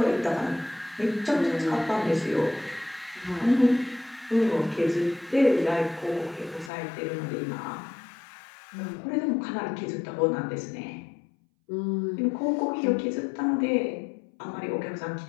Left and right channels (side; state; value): right; drops out; at 6.7 s